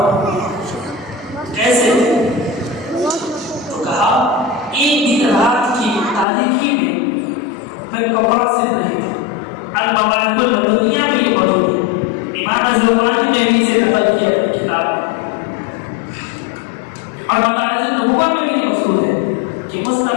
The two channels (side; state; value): right; drops out; at 6.2 s